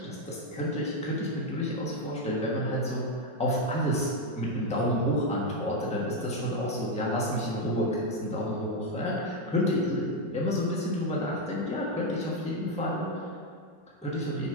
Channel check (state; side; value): normal; both; correlation 0.04